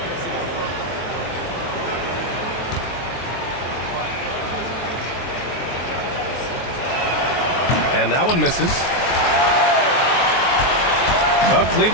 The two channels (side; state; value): right; late; 23 ms